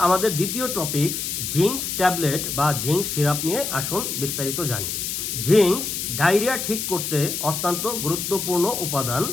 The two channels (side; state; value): left; noise; hiss, 3 dB below the sound